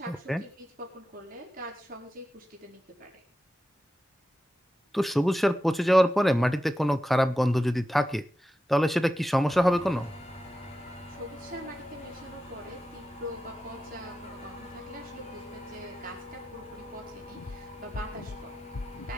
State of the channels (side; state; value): both; normal; correlation 0.91